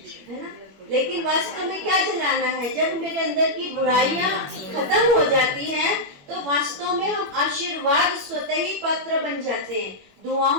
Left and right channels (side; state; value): left; late; 21 ms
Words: है ना। लेकिन वास्तव में क्या जलाना है? जब मेरे अंदर की बुराइयां खत्म हो जाती हैं तो वास्तव में हम आशीर्वाद स्वतः ही पात्र बन जाते हैं, दुआओं